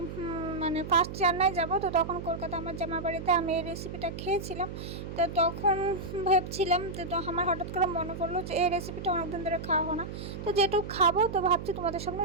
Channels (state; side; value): noise; right; hum, 8 dB below the sound